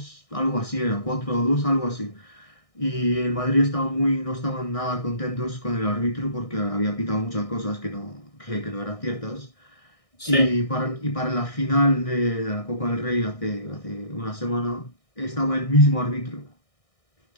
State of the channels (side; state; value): right; late; 1.6 ms